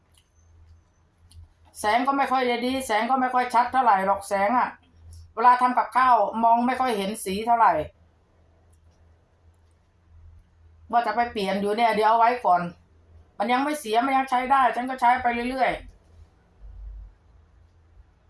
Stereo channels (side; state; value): both; identical; correlation 1.00